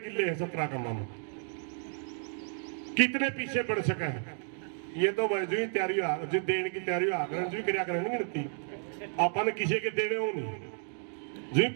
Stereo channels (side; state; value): left; silent; 56 dB below the other